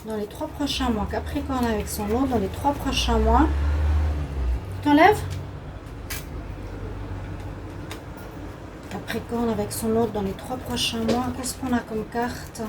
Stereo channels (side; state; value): both; identical; correlation 1.00